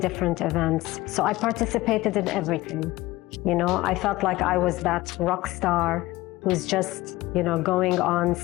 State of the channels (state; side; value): quieter; right; 18.8 dB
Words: events. So I participated in everything. You know, I felt like I was that rock star who's just, you know, going on